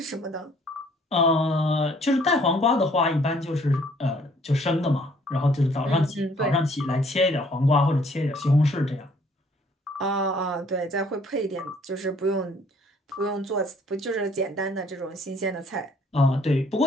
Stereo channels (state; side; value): normal; both; correlation 0.61